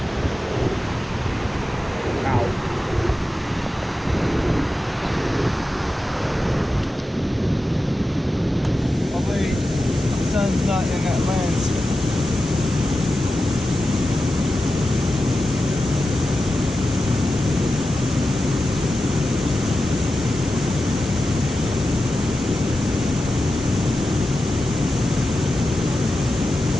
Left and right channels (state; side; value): normal; both; correlation 0.92